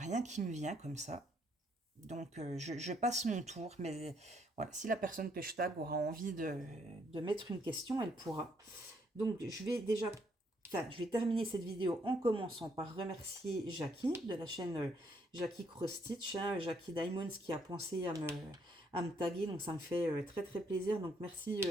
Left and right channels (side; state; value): both; normal; correlation 0.71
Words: qui me vient comme ça. Donc, je passe mon tour. Mais voilà, si la personne que je tag aura envie de mettre une question, elle pourra. Donc, je vais terminer cette vidéo en commençant par remercier Jackie de la chaîne Jackie Cross Stitch, hein, Jackie Diamonds qui a pensé à me taguer. Donc, ça me fait très très plaisir. Donc, merci